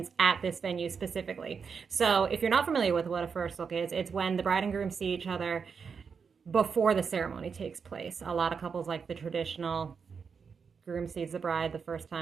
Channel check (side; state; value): left; quieter; 5.9 dB